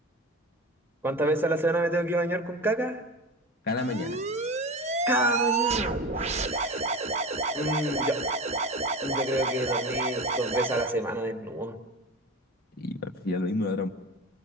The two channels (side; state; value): both; normal; correlation 0.29